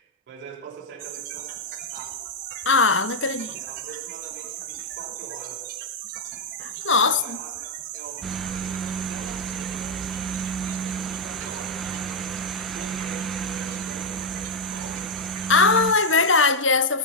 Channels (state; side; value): normal; both; correlation -0.01